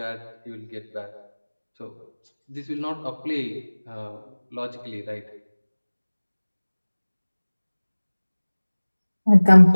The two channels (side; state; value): both; inverted; correlation -1.00